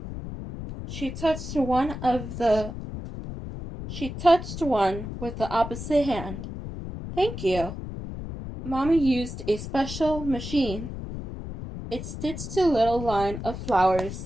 She touched one with the opposite hand. Thank you. Mommy used a special machine. It stitched a little line of flowers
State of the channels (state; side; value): noise; left; rumble, 8 dB below the sound